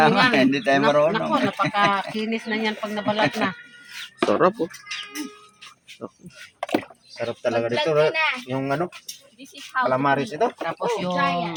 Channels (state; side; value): identical; both; correlation 1.00